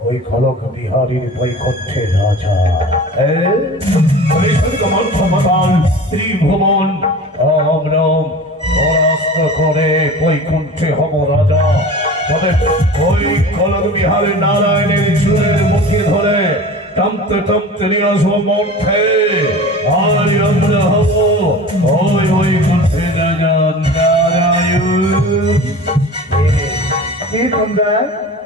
ওই খলক বিহারীর বৈকুণ্ঠের রাজা। ত্রিভুবন আমরা পরাস্ত করে বৈকুণ্ঠে হব রাজা। তবে ওই খলক বিহারের নারায়ণের চুলের মুখে ধরে টানতে টানতে নিয়ে আসবো মঠে। আর আমরা হব ওই বৈকুণ্ঠে রাজা নারায়ণ।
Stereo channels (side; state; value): both; normal; correlation 0.37